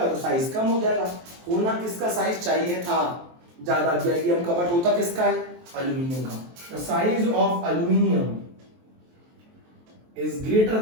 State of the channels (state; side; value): late; left; 23 ms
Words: तो साइज कम हो जाएगा। होना किसका साइज चाहिए था ज्यादा, गैलियम का, बट होता किसका है, एल्यूमिनियम का। The size of aluminium is greater